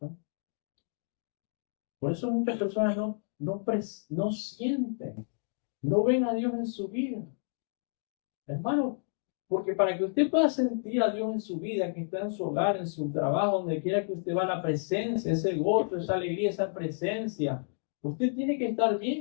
Por eso muchas personas no sienten, no ven a Dios en su vida. Hermano, porque para que usted pueda sentir a Dios en su vida, que está en su hogar, en su trabajo, donde quiera que usted va, la presencia, ese gozo, esa alegría, esa presencia, usted tiene que estar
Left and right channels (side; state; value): right; silent; digital silence